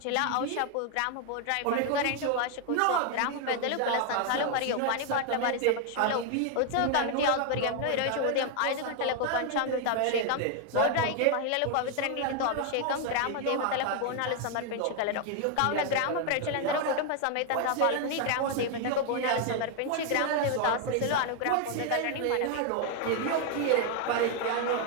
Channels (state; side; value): different; both; correlation 0.00